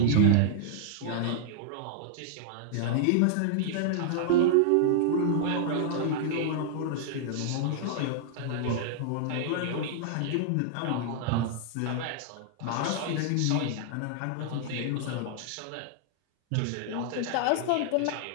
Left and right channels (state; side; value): different; both; correlation -0.01